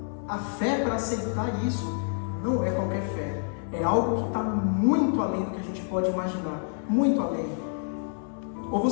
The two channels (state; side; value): silent; right; 59 dB below the other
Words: A fé para aceitar isso não é qualquer fé. É algo que está muito além do que a gente pode imaginar. Muito além. Ou